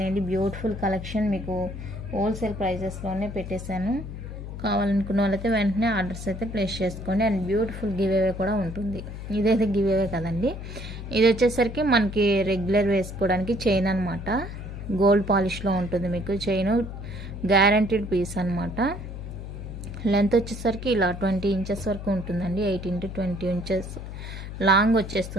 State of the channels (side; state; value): left; noise; hum, 9 dB below the sound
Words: బ్యూటిఫుల్ కలెక్షన్ మీకు హోల్సేల్ ప్రైజెస్లోనే పెట్టేశాను. కావాలనుకున్న వాళ్ళైతే వెంటనే ఆర్డర్స్ అయితే ప్లేస్ చేసుకోండి. అండ్ బ్యూటిఫుల్ గివ్ అవే కూడా ఉంటుంది. ఇదైతే గివ్ అవే కదండి, ఇది వచ్చేసరికి మనకి రెగ్యులర్ వేసుకోవడానికి చైన్ అనమాట. గోల్డ్ పాలిష్లో ఉంటుంది మీకు చైన్, గ్యారంటీడ్ పీస్ అనమాట. లెంత్ వచ్చేసరికి ఇలా 20 ఇంచెస్ వరకు ఉంటుందండి. 18 to 20 ఇంచెస్ లాంగ్